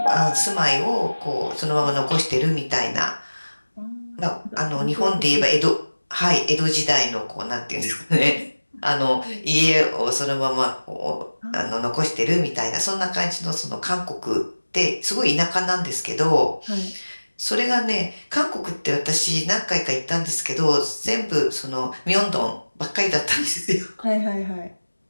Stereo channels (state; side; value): inverted; both; correlation -1.00